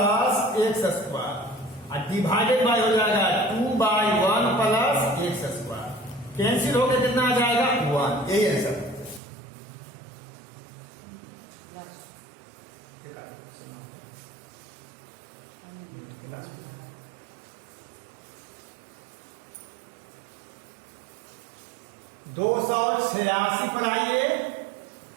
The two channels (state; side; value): drops out; left; at 9.2 s